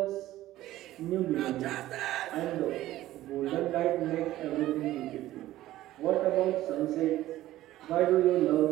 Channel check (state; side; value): quieter; left; 15.0 dB